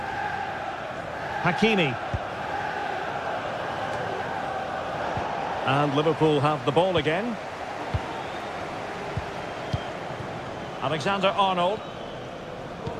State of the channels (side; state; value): both; identical; correlation 1.00